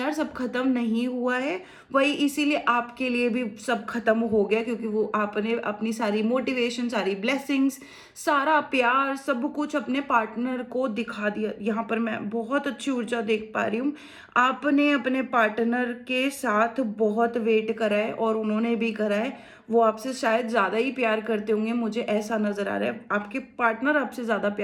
सब खत्म नहीं हुआ है, वही इसीलिए आपके लिए भी सब खत्म हो गया, क्योंकि वो आपने अपनी सारी मोटिवेशन, सारी ब्लेसिंग्स, सारा प्यार, सब कुछ अपने पार्टनर को दिखा दिया। यहाँ पर मैं बहुत अच्छी ऊर्जा देख पा रही हूँ। आपने अपने पार्टनर के साथ बहुत वेट करा है और उन्होंने भी करा है। वो आपसे शायद ज़्यादा ही प्यार करते होंगे, मुझे ऐसा नज़र आ रहा है। आपके पार्टनर आपसे ज़्यादा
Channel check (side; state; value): both; identical; correlation 1.00